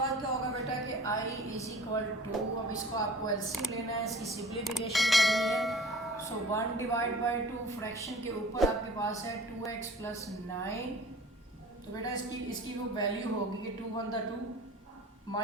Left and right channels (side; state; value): both; normal; correlation 0.44